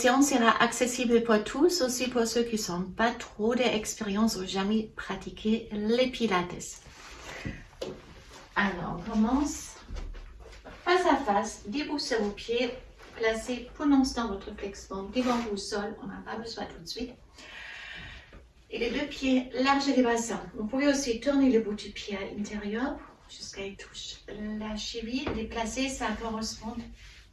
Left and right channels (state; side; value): identical; both; correlation 1.00